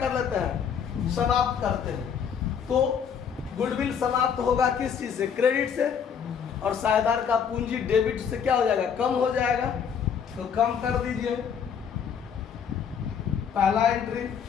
लेते हैं समाप्त करते हैं। तो गुडविल समाप्त होगा किस चीज से क्रेडिट से और साझेदार का पूंजी डेबिट से क्या हो जाएगा कम हो जाएगा। तो कम कर दीजिए। पहला entry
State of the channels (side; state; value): right; quieter; 7.4 dB